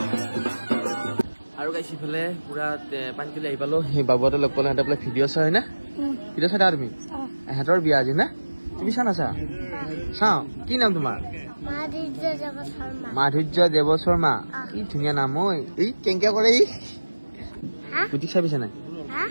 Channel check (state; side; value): inverted; both; correlation -1.00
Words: আৰু গাইছ ইফালে পুৰা পানী তুলি আহি পালো সেই বাবুহঁতে লগ পালো সিহঁতে বোলে ভিডিঅ' চাই হয় না ভিডিঅ' চাই তুমি সিহঁতৰ বিয়া আজি না তুমি চা নাচা চাওঁ কি নাম তোমাৰ মাধুৰ্য দেৱ শৰ্মা কি ধুনীয়া নাম ঐ এই কেংকে কৰে ই গুটিক চাবিছে নাই